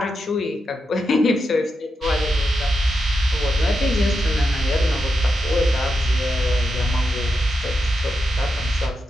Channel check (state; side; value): normal; both; correlation 0.86